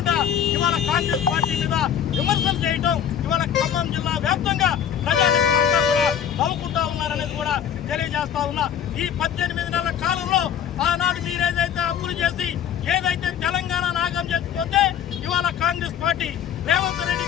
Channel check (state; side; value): quieter; right; 8.9 dB